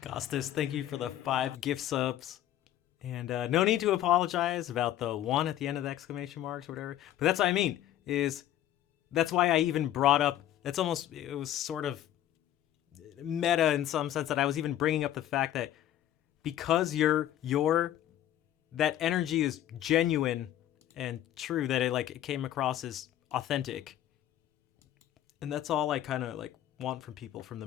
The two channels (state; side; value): quieter; right; 12.3 dB